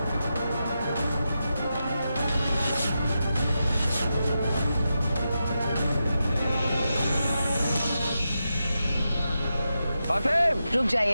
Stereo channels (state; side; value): inverted; both; correlation -0.88